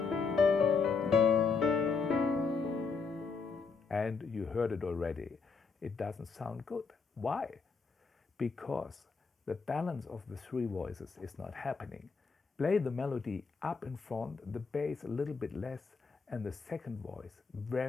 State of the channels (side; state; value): right; quieter; 4.9 dB